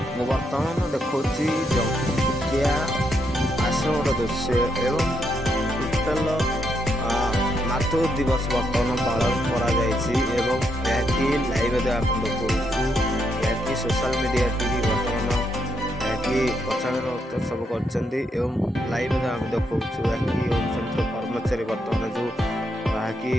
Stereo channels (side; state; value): both; normal; correlation 0.78